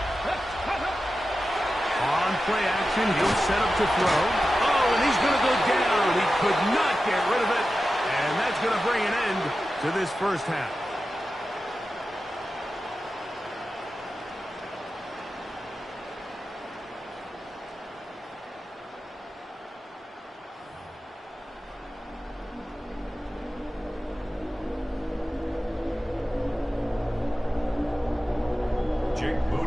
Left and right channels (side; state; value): both; normal; correlation 0.93